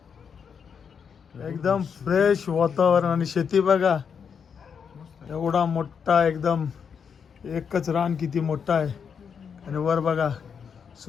एकदम फ्रेश वातावरण. आणि शेती बघा, एवढा मोठा एकदम एकच रान किती मोठा आहे. आणि वर बघा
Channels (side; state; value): right; quieter; 6.8 dB